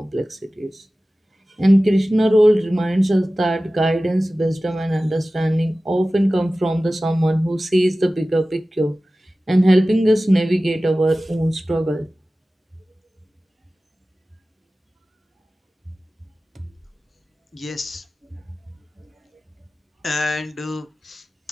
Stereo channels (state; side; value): normal; both; correlation 0.96